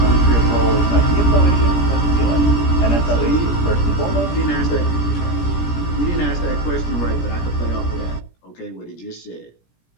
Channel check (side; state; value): right; late; 17 ms